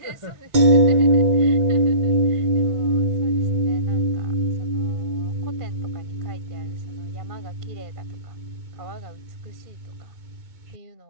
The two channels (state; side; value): late; left; 2.2 ms